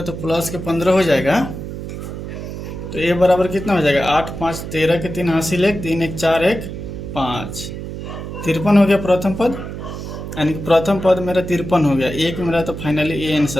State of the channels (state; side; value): noise; right; hum, 8 dB below the sound